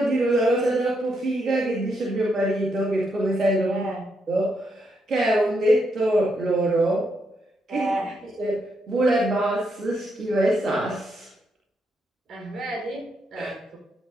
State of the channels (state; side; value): normal; both; correlation 0.79